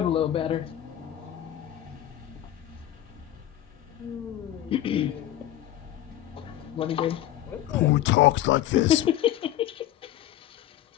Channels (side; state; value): right; quieter; 12.7 dB